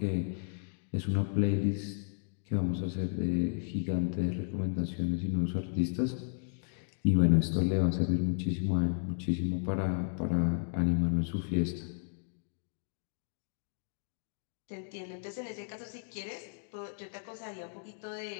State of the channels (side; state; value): right; silent; digital silence